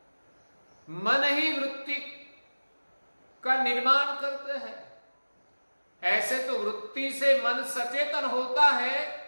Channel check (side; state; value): both; inverted; correlation -1.00